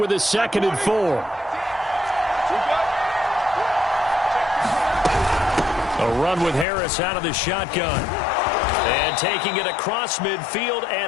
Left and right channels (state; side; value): drops out; right; at 6.7 s